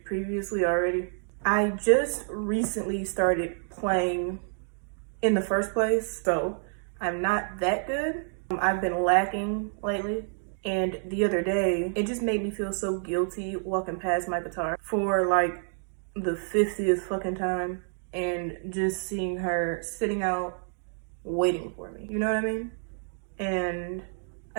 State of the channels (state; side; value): silent; left; digital silence